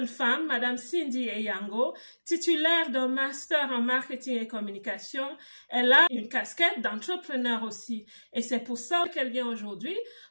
femme, Madame Cindy Eyango, titulaire d'un master en marketing et communication. Elle a une casquette d'entrepreneur aussi. Et c'est pour ça qu'elle vient aujourd'hui,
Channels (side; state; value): both; inverted; correlation -1.00